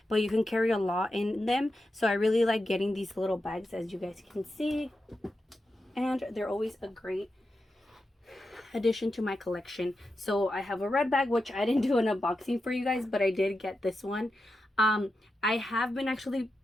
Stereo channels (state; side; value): normal; both; correlation 0.89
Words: but you can carry a lot in them. So I really like getting these little bags, as you guys can see. And they're always a great addition to my collection. So I have a red bag, which I didn't do an unboxing for you guys, but I did get this one. I have been actually